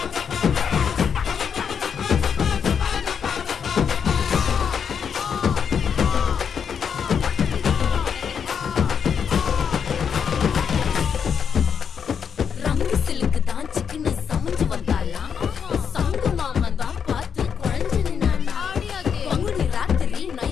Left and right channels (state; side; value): quieter; right; 7.1 dB